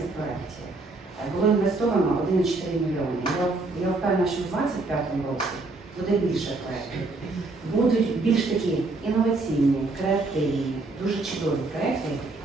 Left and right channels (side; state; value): left; quieter; 3.3 dB